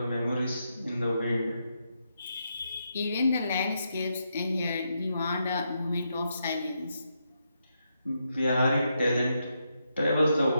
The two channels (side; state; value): both; inverted; correlation -0.82